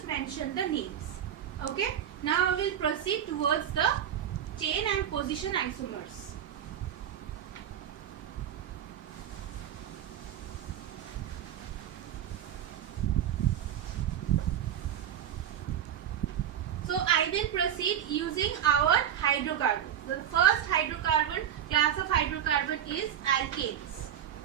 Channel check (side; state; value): left; quieter; 10.0 dB